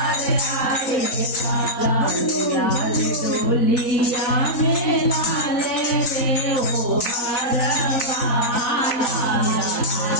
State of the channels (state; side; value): late; right; 3.9 ms